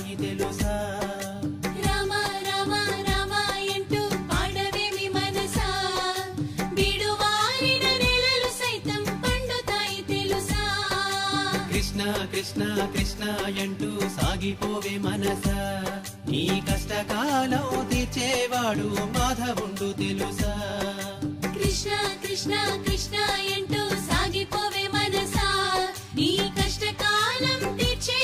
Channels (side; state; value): both; identical; correlation 1.00